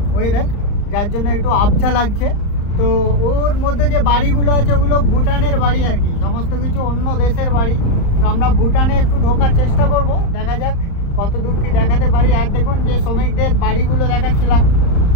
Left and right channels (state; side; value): late; right; 35 ms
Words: ওয়েদার, যার জন্য একটু আবছা লাগছে। তো ওর মধ্যে যে বাড়িগুলো আছে ওগুলো ভুটানের বাড়ি আর কি, সমস্ত কিছু অন্য দেশের বাড়ি। তো আমরা ভুটানে একটু ঢোকার চেষ্টা করব, দেখা যাক কত দূর কি দেখাতে পারি। আর দেখুন যে শ্রমিকদের বাড়িগুলো দেখাচ্ছিলাম,